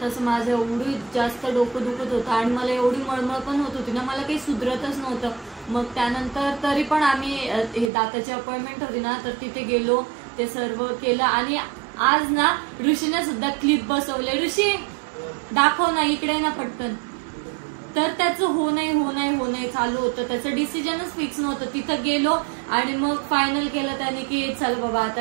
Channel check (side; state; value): left; drops out; at 7.9 s